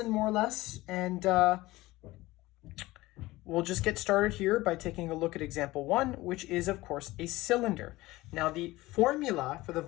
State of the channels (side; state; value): right; quieter; 18.9 dB